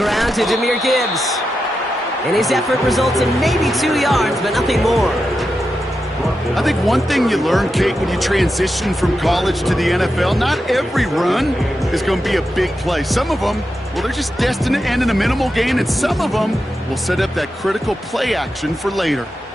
to Jahmyr Gibbs. And his effort results in maybe 2 yards, but nothing more. I think one thing you learn, Kate, when you transition from college to the NFL, not every run is going to be a big play. Some of them, well, they're just destined to end in a minimal gain, and some of them will set up that critical play action for later.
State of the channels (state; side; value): normal; both; correlation 0.88